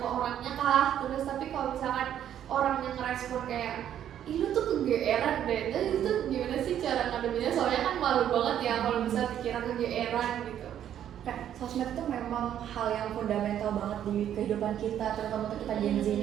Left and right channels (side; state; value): left; quieter; 10.4 dB